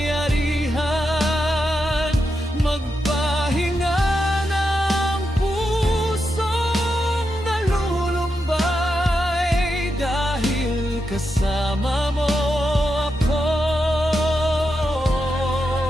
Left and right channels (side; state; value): both; normal; correlation 0.86